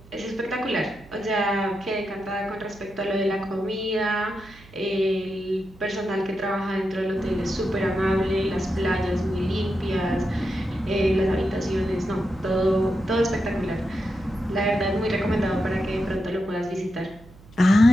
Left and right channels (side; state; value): right; noise; hum, 23 dB below the sound